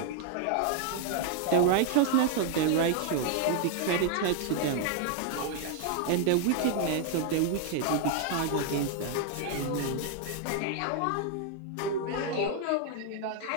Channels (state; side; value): different; both; correlation 0.00